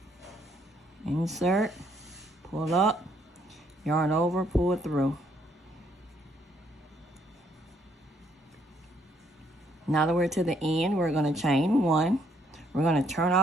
Insert, pull up, yarn over, pull it through. Now that we're to the end, we're going to chain one. We're going to turn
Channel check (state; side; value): normal; both; correlation 0.69